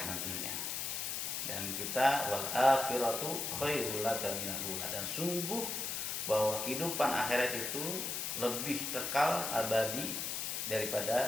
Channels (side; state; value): left; noise; hiss, 2 dB below the sound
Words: nantinya. Dan kita wal akhiratu khairul laka minal ula, dan sungguh bahwa kehidupan akhirat itu lebih kekal abadi